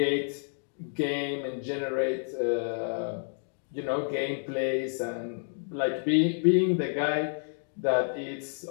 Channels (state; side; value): silent; right; digital silence